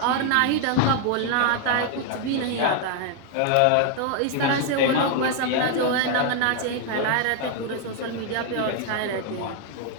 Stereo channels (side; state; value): both; different; correlation 0.00